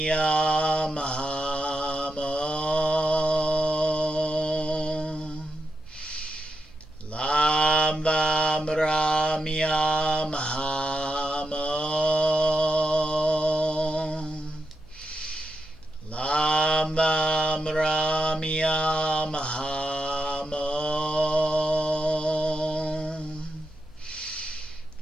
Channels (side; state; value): both; normal; correlation 0.86